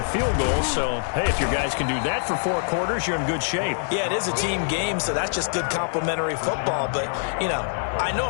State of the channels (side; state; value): right; silent; digital silence